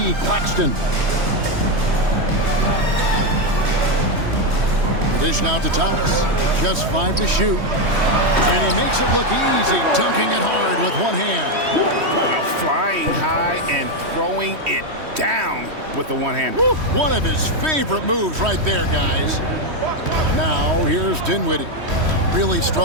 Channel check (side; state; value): left; late; 3.1 ms